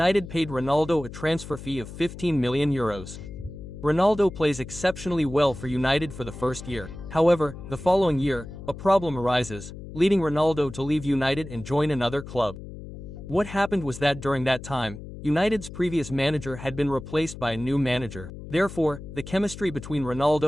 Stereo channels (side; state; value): left; noise; hum, 12 dB below the sound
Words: paid Ronaldo a transfer fee of 15 million euros. Ronaldo plays exceptionally well for United for the first year. However, the following year, a problem arises, leading Ronaldo to leave United and join another club. What happened was that during that time, United's previous manager had been replaced by a new manager. Therefore, the chemistry between